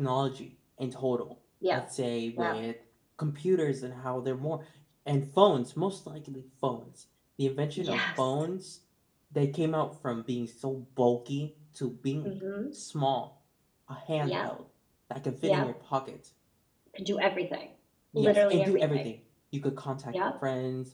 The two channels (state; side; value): identical; both; correlation 1.00